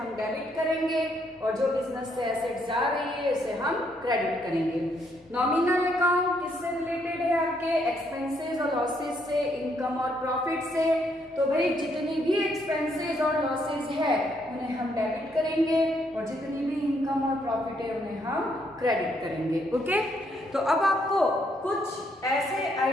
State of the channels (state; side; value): normal; both; correlation 0.72